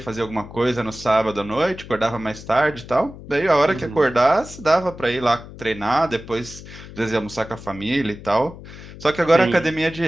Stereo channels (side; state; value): left; noise; hum, 15 dB below the sound